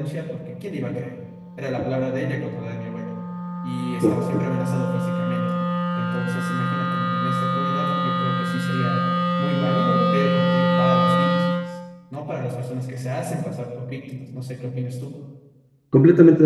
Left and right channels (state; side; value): identical; both; correlation 1.00